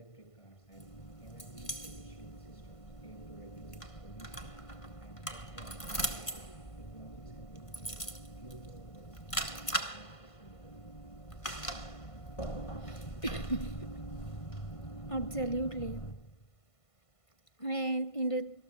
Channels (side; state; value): right; late; 1.5 ms